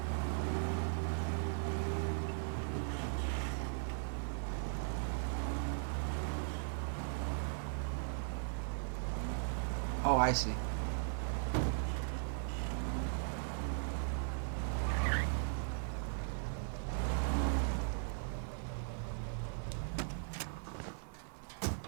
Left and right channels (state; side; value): silent; left; digital silence